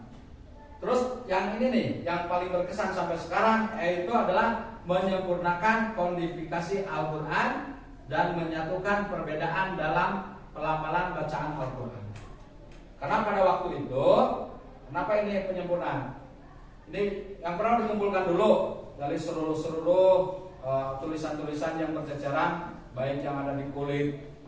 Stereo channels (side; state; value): both; identical; correlation 1.00